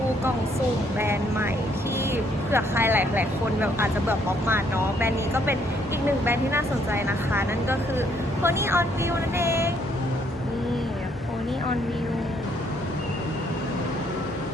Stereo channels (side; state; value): both; normal; correlation 0.68